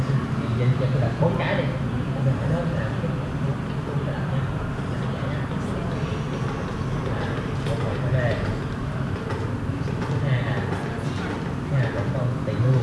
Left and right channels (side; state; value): both; identical; correlation 1.00